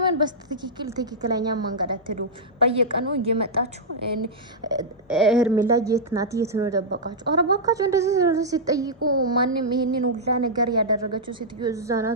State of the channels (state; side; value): normal; both; correlation -0.10